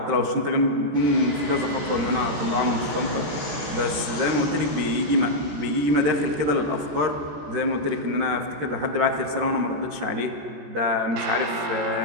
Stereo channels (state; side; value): late; left; 14 ms